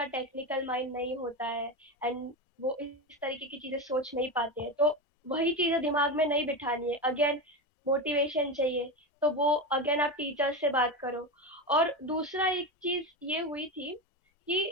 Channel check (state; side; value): normal; both; correlation 0.18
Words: टेक्निकल माइंड नहीं होता है एंड वो इस तरीके की चीजें सोच नहीं पाते हैं। तो वही चीजें दिमाग में नहीं बिठानी है। अगेन मोटिवेशन चाहिए, तो वो अगेन आप टीचर से बात करो। और दूसरा एक चीज ये हुई थी कि